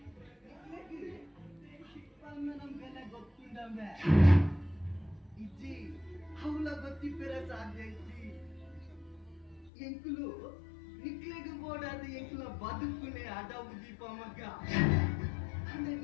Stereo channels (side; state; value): right; drops out; at 9.7 s